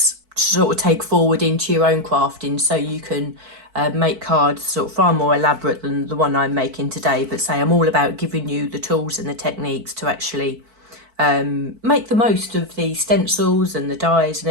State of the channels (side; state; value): left; late; 4.5 ms